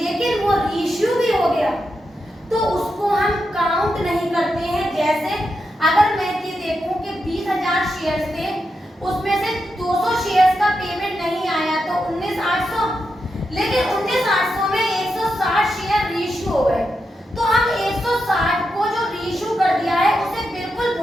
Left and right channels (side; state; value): both; normal; correlation 0.86